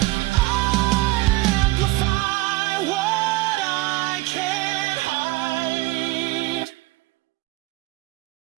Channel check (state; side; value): quieter; left; 20.3 dB